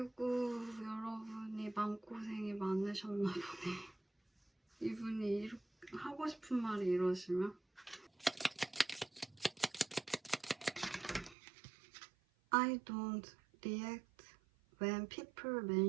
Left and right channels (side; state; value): left; drops out; at 11.4 s